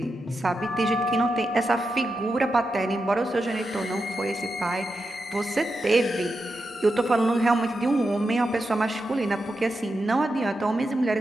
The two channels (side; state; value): both; normal; correlation 0.88